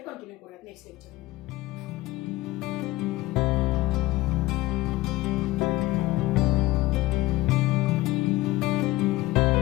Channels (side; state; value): right; quieter; 18.3 dB